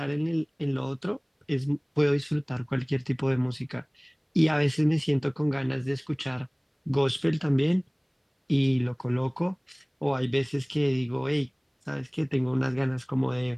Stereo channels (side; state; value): both; identical; correlation 1.00